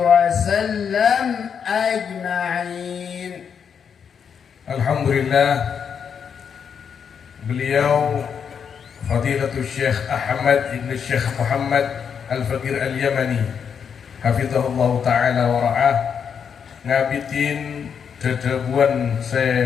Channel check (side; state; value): right; quieter; 7.1 dB